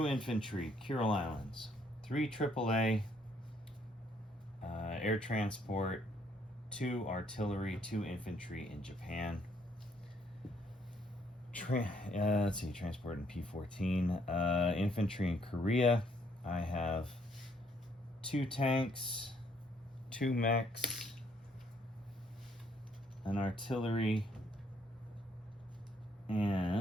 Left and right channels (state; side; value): normal; both; correlation 0.68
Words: infantry, Kuril Islands. 3 AAA, air transport. 2 artillery, 2 infantry in Japan. Let's see, transport in P-14. Infantry in Korea. I have 2 tanks, 2 mechs, an artillery,